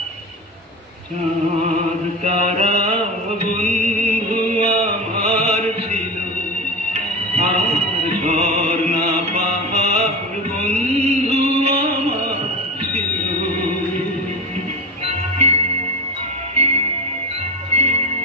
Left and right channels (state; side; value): normal; both; correlation 0.24